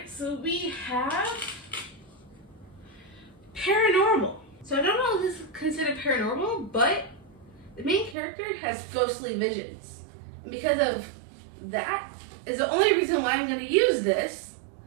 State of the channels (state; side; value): drops out; left; at 8.2 s